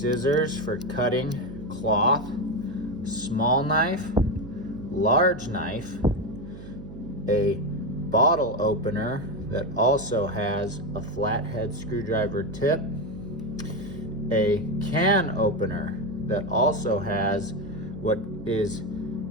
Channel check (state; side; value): noise; right; hum, 14 dB below the sound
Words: for cutting cloth, small knife, large knife, a bottle opener that also has a flathead screwdriver tip, a can opener that also has what is